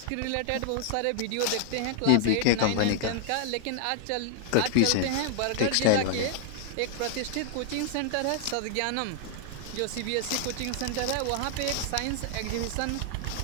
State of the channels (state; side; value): different; both; correlation 0.00